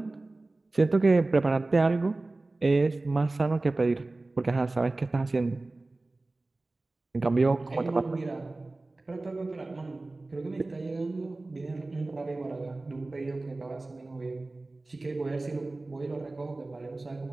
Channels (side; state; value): left; quieter; 3.1 dB